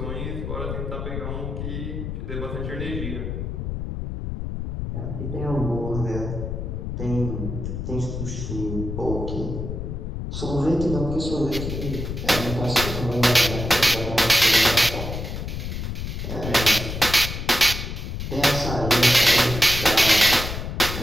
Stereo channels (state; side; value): noise; left; rumble, 5 dB below the sound